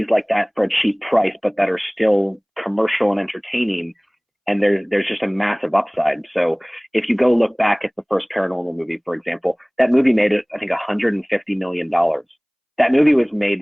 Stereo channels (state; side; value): identical; both; correlation 1.00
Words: like that for a cheap price, but that are still commercial and entertaining, and there's just a massive upside. So if you go look back at the first Paranormal movie, for example, that movie made, I think, $150 million. That movie was